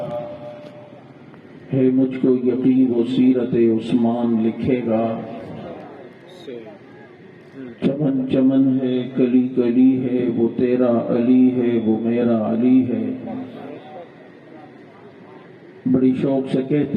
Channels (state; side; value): identical; both; correlation 1.00